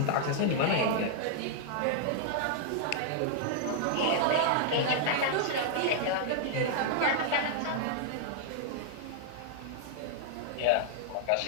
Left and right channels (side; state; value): both; different; correlation -0.01